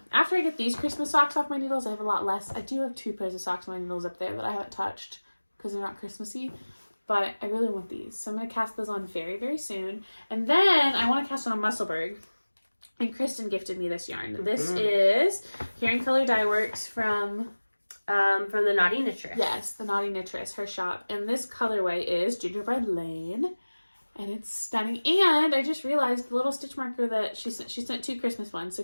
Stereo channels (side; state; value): both; inverted; correlation -1.00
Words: After I get these Christmas socks off my needles, I have a lot less. I do have 2 pairs of socks on my needles up there that I haven't touched because they're not Christmassy. But I really want these. So I'm going to cast those on very, very soon. And then I want to cast on a Musselburgh. And Christen gifted me this yarn. This is Here in Color Dye Works from the Naughty Knitress. Yes, the Naughty Knitress, her shop. And this colorway is Gingerbread Lane. And it's stunning. And I just realized the little stitch marker that she sent 2 Christmas ones. So